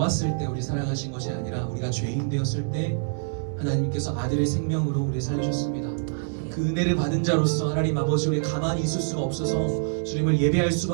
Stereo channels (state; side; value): silent; left; 59 dB below the other